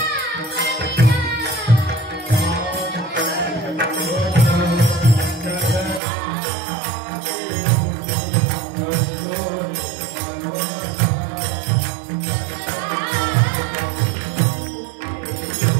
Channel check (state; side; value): drops out; left; at 6.0 s